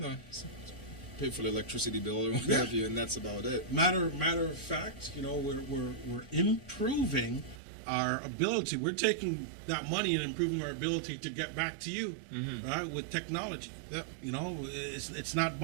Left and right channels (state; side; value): drops out; left; at 7.6 s